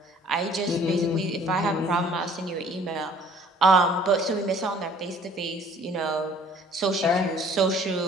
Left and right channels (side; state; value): both; normal; correlation 0.55